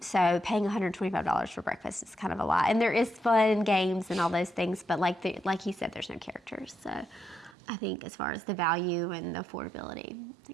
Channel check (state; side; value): drops out; left; at 7.6 s